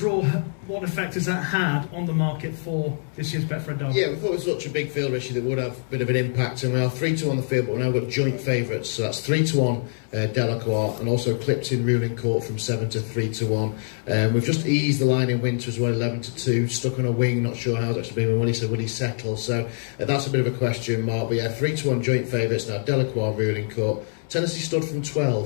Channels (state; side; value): silent; right; 62 dB below the other